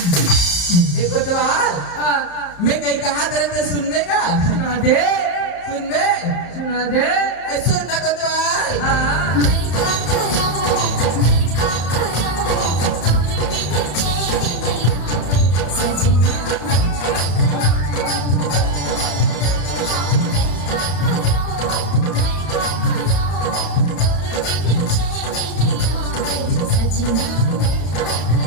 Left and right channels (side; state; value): right; late; 34 ms